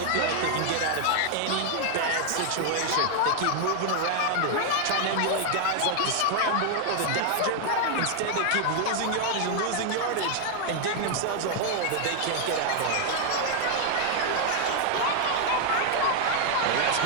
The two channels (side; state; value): both; different; correlation 0.00